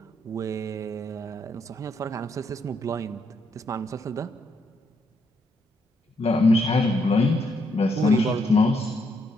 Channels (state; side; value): normal; both; correlation 0.75